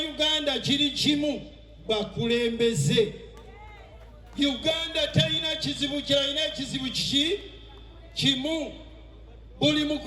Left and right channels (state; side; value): identical; both; correlation 1.00